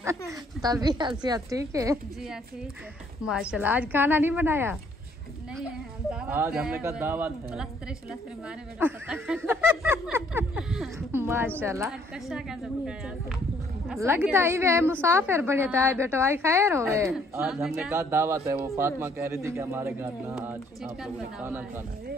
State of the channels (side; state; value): both; normal; correlation 0.64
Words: तभी हसीयत ठीक है जी ठीक है। माशाल्लाह। आज खाना नहीं बनाया? नहीं है दावत आज हमने कहा दावत है। प्लस्तर मारे बेटा पता माशाल्लाह। कशा कैसे पकाया लगता ही वे मुसाफिर बड़े था बेटो। आई खैर हो गए। आज हमने कहा दावत है। वो फातिमा कह रही थी कि हमारे घर ना आज आप लोगों ने खाना खाना है।